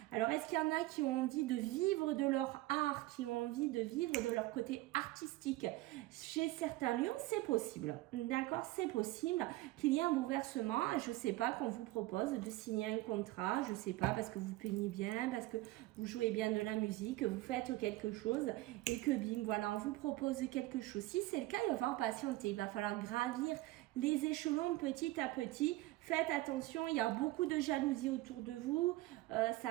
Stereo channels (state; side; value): quieter; left; 18.3 dB